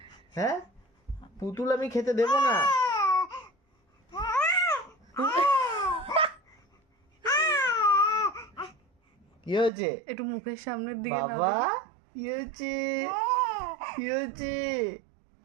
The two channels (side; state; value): left; drops out; at 9.7 s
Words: হ্যাঁ, পুতুল আমি খেতে দেবো না। কি হয়েছে? একটু মুখের সামনের দিকে নাও। বাবা কি হয়েছে? কি হয়েছে?